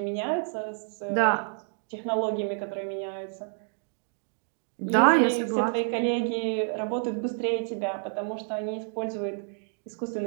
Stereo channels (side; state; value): left; silent; digital silence